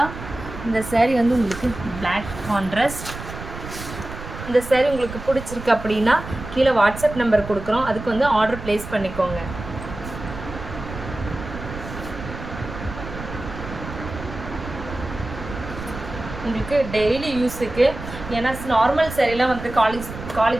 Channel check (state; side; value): noise; right; rumble, 10 dB below the sound